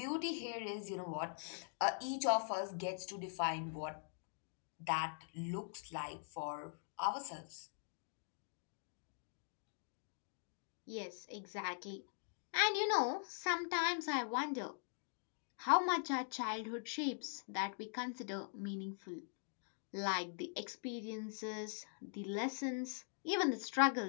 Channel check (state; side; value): silent; right; digital silence